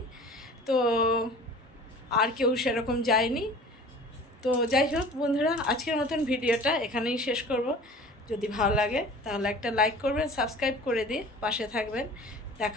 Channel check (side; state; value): both; normal; correlation 0.43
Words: তো আর কেউ সেরকম যায়নি। তো যাই হোক বন্ধুরা, আজকের মতন ভিডিওটা এখানেই শেষ করব। যদি ভালো লাগে তাহলে একটা লাইক করবেন, সাবস্ক্রাইব করে দিয়ে পাশে থাকবেন।